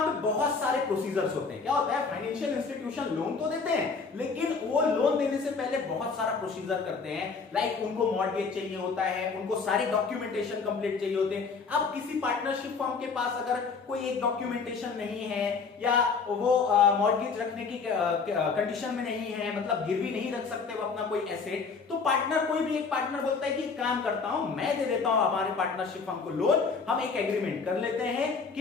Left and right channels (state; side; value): quieter; right; 4.9 dB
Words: पे बहुत सारे प्रोसीजर्स होते हैं। क्या होता है, फाइनेंशियल इंस्टीट्यूशन लोन तो देते हैं लेकिन वो लोन देने से पहले बहुत सारा प्रोसीजर करते हैं। लाइक उनको मॉर्गेज चाहिए होता है, उनको सारे डॉक्यूमेंटेशन कंप्लीट चाहिए होते हैं। अब किसी पार्टनरशिप फर्म के पास अगर कोई एक डॉक्यूमेंटेशन नहीं है या वो मॉर्गेज रखने की कंडीशन में नहीं है, मतलब गिरवी नहीं रख सकते वो अपना कोई एसेट, तो पार्टनर, कोई भी एक पार्टनर बोलता है कि काम करता हूं, मैं दे देता हूं हमारे पार्टनरशिप फर्म को लोन। हम एक एग्रीमेंट कर लेते हैं